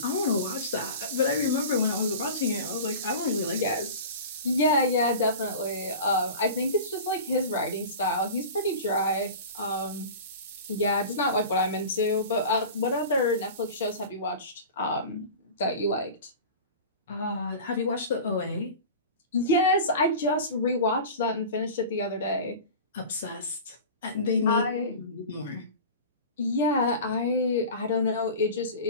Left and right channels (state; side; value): inverted; both; correlation -0.34